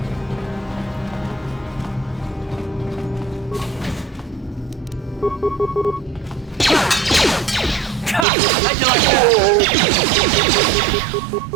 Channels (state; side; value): drops out; left; at 8.2 s